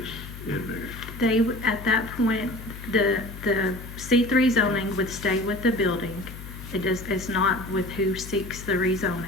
in there? They, at that point, the C3 zoning would stay with the building. It's not with who seeks the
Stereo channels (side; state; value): left; noise; hum, 13 dB below the sound